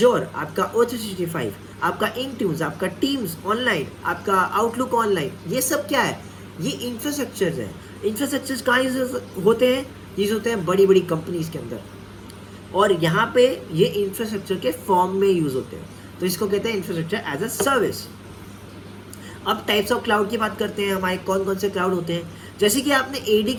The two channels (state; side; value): identical; both; correlation 1.00